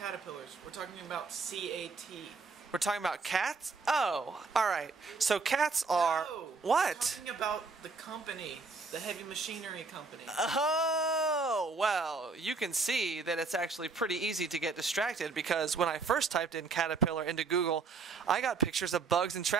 We're talking about CAT. We're talking about cats? Oh, alright. So cats are... No, what? We're talking about the company, the heavy machinery company. Oh, well, you can see that it's actually pretty easy to get distracted, because when I first typed in caterpillar into Google, I got pictures of bugs and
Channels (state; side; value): quieter; left; 4.3 dB